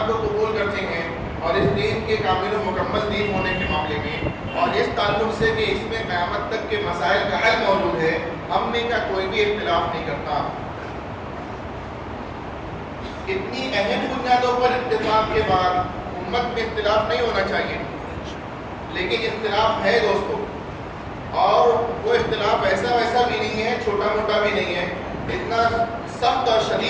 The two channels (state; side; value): identical; both; correlation 1.00